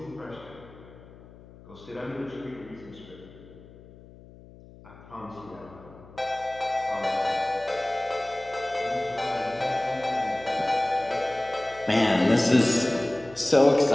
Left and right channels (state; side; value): noise; left; hum, 21 dB below the sound